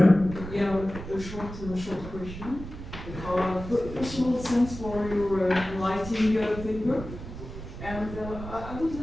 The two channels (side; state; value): right; noise; rumble, 11 dB below the sound